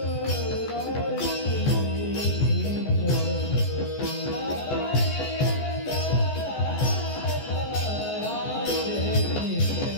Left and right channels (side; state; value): right; late; 14 ms